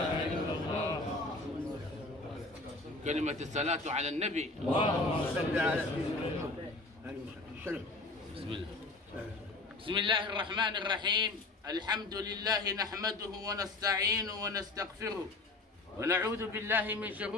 إلا الله. كلمة الصلاة على النبي. اللهم صل على سيدنا محمد. بسم الله. بسم الله الرحمن الرحيم. الحمد لله نحمده ونستعينه ونستغفره ونعوذ بالله من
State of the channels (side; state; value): right; quieter; 3.2 dB